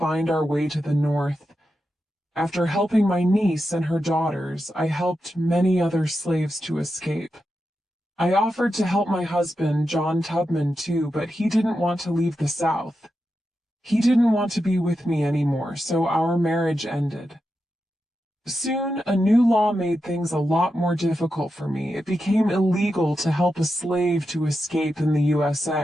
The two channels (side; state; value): both; normal; correlation 0.88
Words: our way to the north. After helping my niece and her daughters, I helped many other slaves to escape. I offered to help my husband, John Tubman, too, but he didn't want to leave the South. He didn't want to be with me anymore, so our marriage ended. Soon, a new law made things a lot more difficult for me. It became illegal to help a slave to escape in the